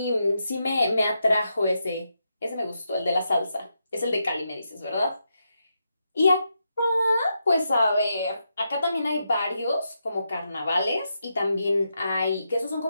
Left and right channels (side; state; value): both; inverted; correlation -0.84